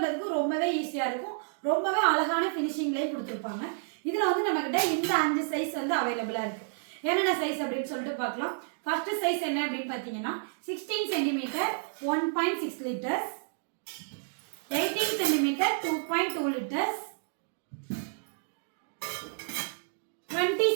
ரொம்பவே ஈஸியா இருக்கும். ரொம்பவே அழகான ஃபினிஷிங்லயும் கொடுத்துருப்பாங்க. இதுல வந்து நம்ம கிட்ட இந்த 5 சைஸ் வந்து அவைலபிளா இருக்கு. என்னென்ன சைஸ் அப்படின்னு சொல்லிட்டு பார்க்கலாம். ஃபர்ஸ்ட் சைஸ் என்ன அப்படின்னு பாத்தீங்கன்னா 16 centimetre 1.6 litres, 18 centimetre 2.2 litres, 20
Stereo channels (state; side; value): silent; left; digital silence